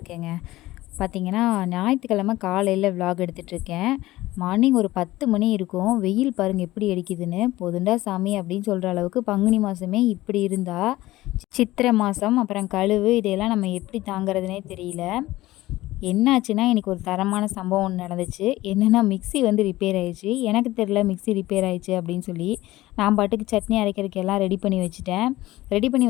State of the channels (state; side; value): quieter; right; 17.2 dB